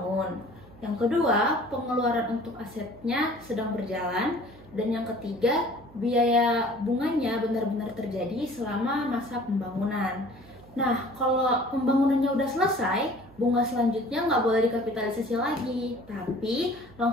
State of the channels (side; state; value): right; noise; hum, 23 dB below the sound